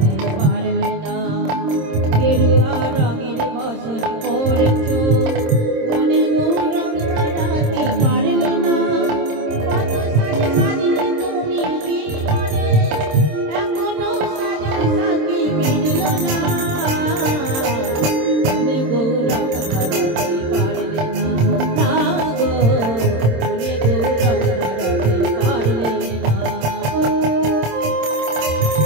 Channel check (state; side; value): late; left; 26 ms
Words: পারলে না। গেরুয়া রঙের বসন পরেছ, মনে গৌরং ধরাতে পারলে না। কত সাজে সাজলে তুমি জীবনে, এখনো সাজার সাথে মিলল না। মনে গৌরং ধরাতে পারলে না, না গো মনে গৌরং ধরাতে পারলে না।